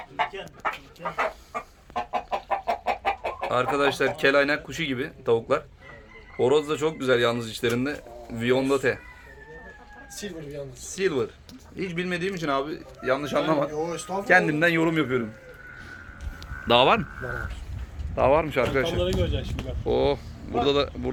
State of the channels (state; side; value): identical; both; correlation 1.00